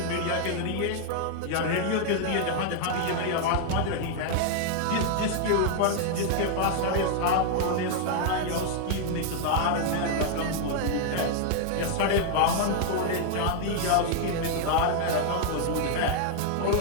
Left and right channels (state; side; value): different; both; correlation 0.00